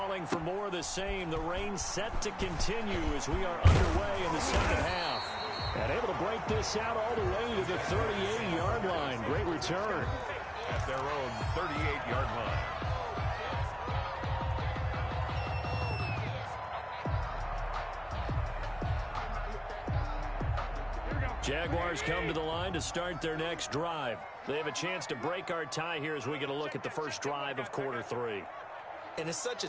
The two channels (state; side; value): identical; both; correlation 1.00